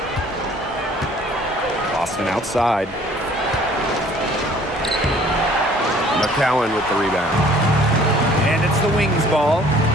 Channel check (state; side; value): normal; both; correlation 0.55